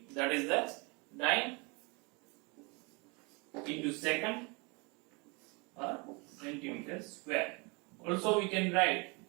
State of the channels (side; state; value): left; quieter; 29.8 dB